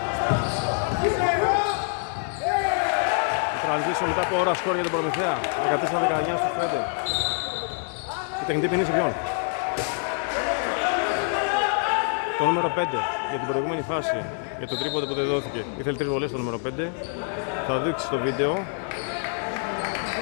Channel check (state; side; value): silent; right; 55 dB below the other